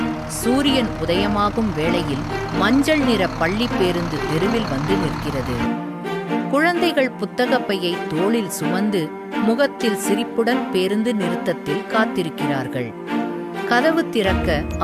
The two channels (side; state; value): both; identical; correlation 1.00